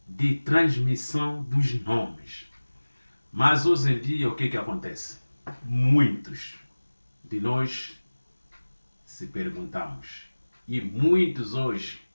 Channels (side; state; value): both; inverted; correlation -1.00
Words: de transmissão dos nomes. Mas hoje em dia o que acontece? Muitos de nós se perguntamos, e muitos hoje